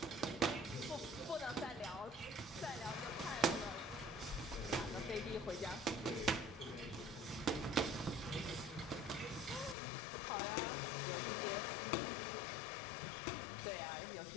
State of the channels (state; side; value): drops out; right; at 9.8 s